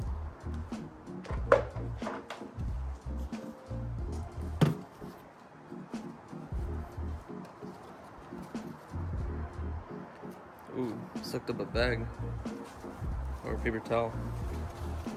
Ooh, sucked up a bag or a paper towel.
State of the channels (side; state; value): both; identical; correlation 1.00